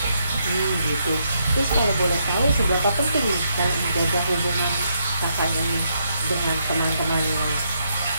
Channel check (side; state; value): both; inverted; correlation -0.77